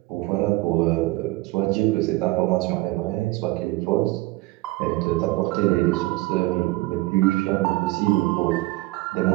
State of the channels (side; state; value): left; quieter; 20.7 dB